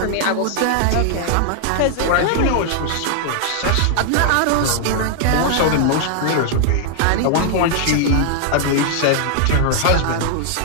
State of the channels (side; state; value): both; different; correlation 0.00